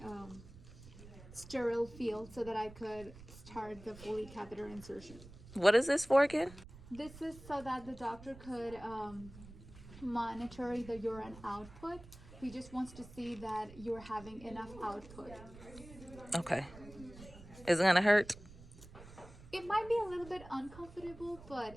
sterile field so that I could start the Foley catheter insertion. What is this for again? This is so that the doctor could monitor the urine output. He just wants to see that you're having enough output. Okay. Is it gonna hurt? It might be a little bit uncomfortable,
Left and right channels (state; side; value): noise; right; rumble, 17 dB below the sound